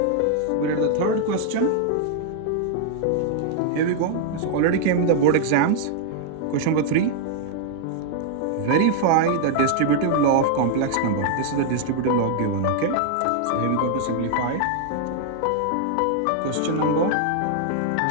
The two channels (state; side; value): different; both; correlation -0.01